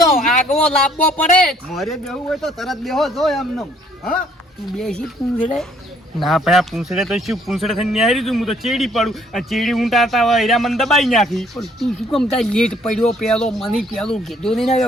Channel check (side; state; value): both; normal; correlation 0.63